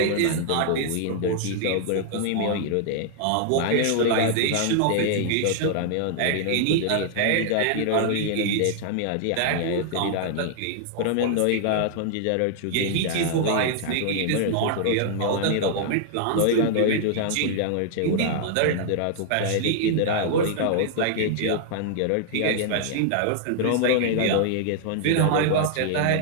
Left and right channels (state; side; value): different; both; correlation -0.01